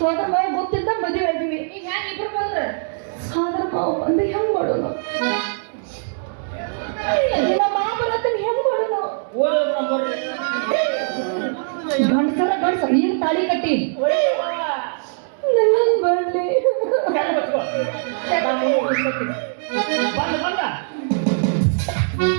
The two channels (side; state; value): left; silent; digital silence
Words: ಮಾವ ಗೊತ್ತಿದ್ದ ಮದುವೆ ಆಗಿವಿ. ಈಗ ಹ್ಯಾಂಗ ಇಬ್ರು ಬಂದ್ರೆ ಸೋದರ ಮಾವ ಬಂದು ಹೆಂಗ್ ಮಾಡೋಣ? ನಮ್ಮ ಮಾವ ಬರತ್ತನ ಹೆಂಗ್ ಮಾಡೋಣ? ಗಂಡಸರ ನೀನು ತಾಳಿ ಕಟ್ಟಿ ನನ್ನ ಬರ್ಲಿ.